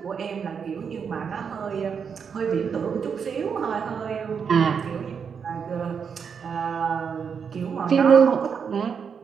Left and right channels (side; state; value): left; quieter; 6.6 dB